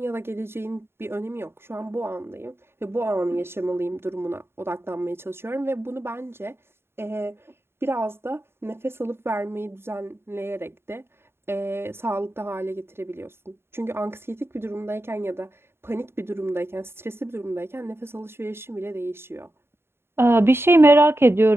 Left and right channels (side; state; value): left; late; 0.12 ms